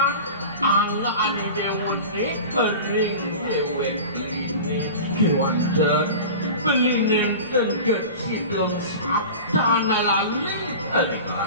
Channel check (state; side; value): inverted; both; correlation -0.35